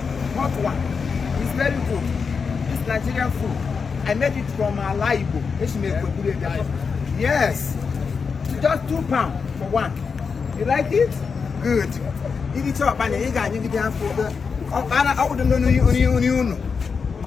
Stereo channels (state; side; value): quieter; right; 5.5 dB